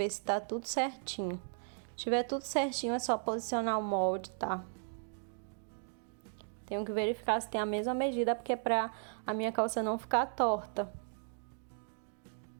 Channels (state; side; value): silent; left; digital silence